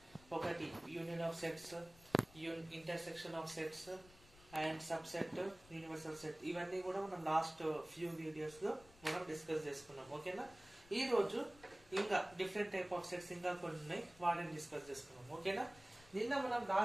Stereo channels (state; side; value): noise; left; rumble, 24 dB below the sound